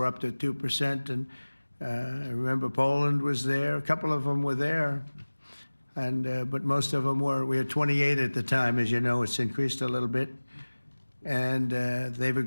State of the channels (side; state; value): both; inverted; correlation -1.00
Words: up to 2%, and I remember Poland was there. A couple of them were there, and but most of them were. We had 28 at the time, as you know. It's increased a little bit, and they've